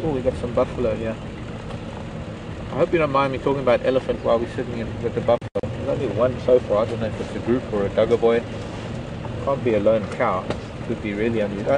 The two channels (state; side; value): identical; both; correlation 1.00